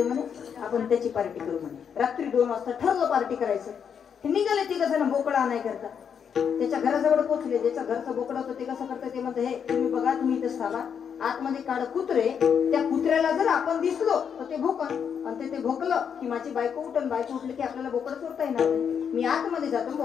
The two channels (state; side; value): quieter; right; 7.4 dB